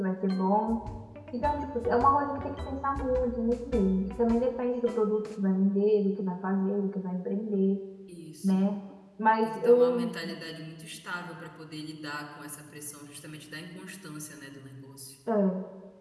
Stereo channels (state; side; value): identical; both; correlation 1.00